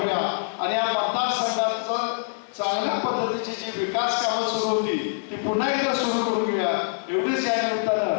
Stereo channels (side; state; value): right; silent; digital silence